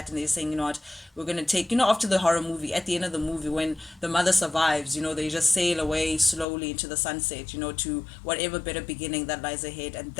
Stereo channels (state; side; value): drops out; right; at 6.5 s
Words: and they're saying, you know what, we're gonna take, after the horror movie, at the end of the movie when the mother survives, they just sail away slowly into the sunset, to whatever better beginning that lies ahead. And